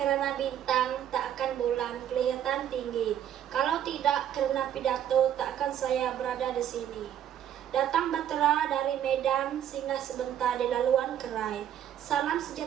bintang, tak akan bulan kelihatan tinggi. Kalau tidak karena pidato, tak akan saya berada di sini. Datang batera dari Medan, singgah sebentar di laluan Kerai. Salam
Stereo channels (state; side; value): quieter; left; 10.4 dB